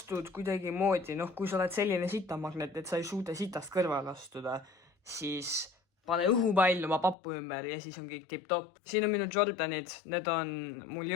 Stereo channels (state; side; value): drops out; right; at 7.2 s